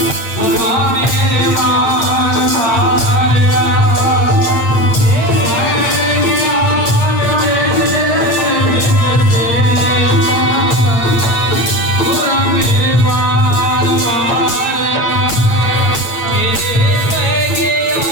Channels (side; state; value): right; late; 8.6 ms